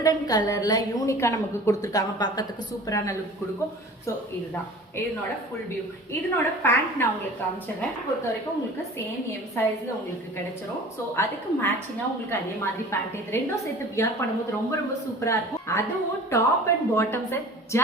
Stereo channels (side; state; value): both; normal; correlation 0.43